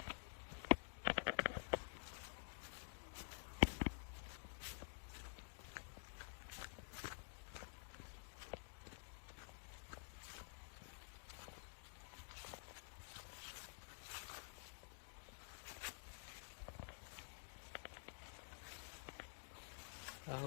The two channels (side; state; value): right; silent; digital silence